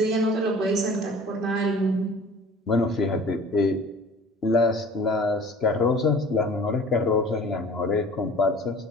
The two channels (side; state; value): both; normal; correlation 0.46